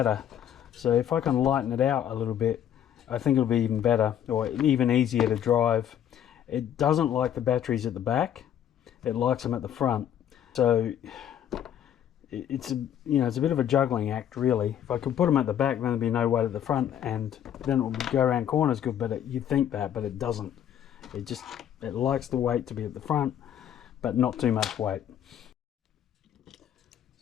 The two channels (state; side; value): quieter; right; 10.1 dB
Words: So if I can lighten it out a little bit, I think it'll be even better, or even easier to drive. It doesn't like the batteries at the back, it likes them at the front. So it's a bit of a juggling act, really. If I could put them at the back, then there'd be no weight at the front, and then it would go around corners good. But you'd think that, but it doesn't. It likes the weight to be at the front, but not too much weight.